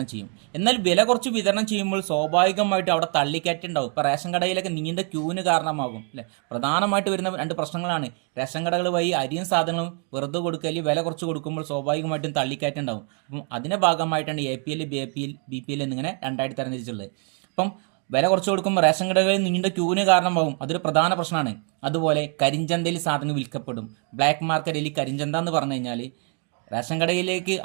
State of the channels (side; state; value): left; quieter; 38.9 dB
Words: ചെയ്യും. എന്നാൽ വില കുറച്ച് വിതരണം ചെയ്യുമ്പോൾ സ്വാഭാവികമായിട്ട് അവിടെ തള്ളിക്കയറ്റുണ്ടാവും. ഇപ്പോൾ റേഷൻ കടയിലൊക്കെ നീണ്ട ക്യൂവിന് കാരണമാകും അല്ലേ? പ്രധാനമായിട്ട് വരുന്ന 2 പ്രശ്നങ്ങളാണ്. റേഷൻ കടകൾ വഴി അരിയും സാധനങ്ങളും വെറുതെ കൊടുക്കുക, അല്ലെങ്കിൽ വില കുറച്ച് കൊടുക്കുമ്പോൾ സ്വാഭാവികമായിട്ടും തള്ളിക്കയറ്റുണ്ടാവും. അപ്പം അതിൻ്റെ ഭാഗമായിട്ടാണ് APL, BPL എന്നിങ്ങനെ രണ്ടായിട്ട് തരംതിരിച്ചുള്ളത്. അപ്പം വില കുറച്ച് കൊടുക്കുമ്പോൾ റേഷൻ കടകളിൽ നീണ്ട ക്യൂവിന് കാരണമാകും. അതൊരു പ്രധാന പ്രശ്നമാണ്. അതുപോലെ കരിഞ്ചന്തയിൽ സാധനം വിൽക്കപ്പെടും. ബ്ലാക്ക് മാർക്കറ്റിൽ കരിഞ്ചന്ത എന്ന് പറഞ്ഞു കഴിഞ്ഞാൽ റേഷൻ കടയിലേക്ക്